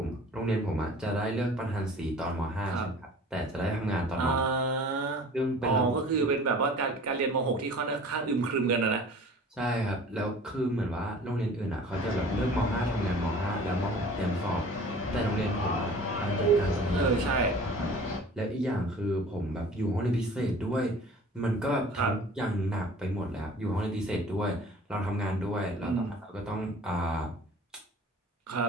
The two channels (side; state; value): both; normal; correlation 0.45